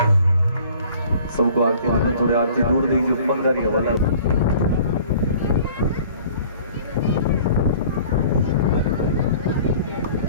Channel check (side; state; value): both; inverted; correlation -0.50